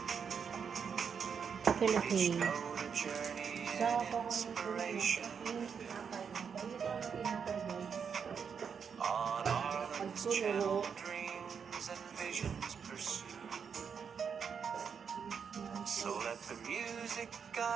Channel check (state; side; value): quieter; left; 6.7 dB